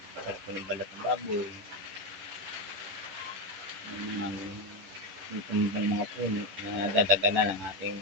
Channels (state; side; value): late; left; 11 ms